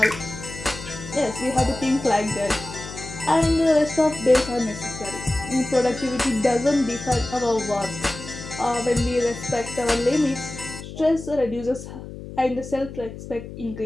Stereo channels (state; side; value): noise; left; hum, 12 dB below the sound